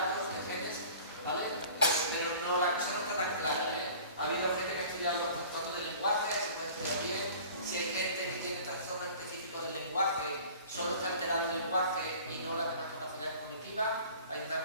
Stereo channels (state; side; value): inverted; both; correlation -0.45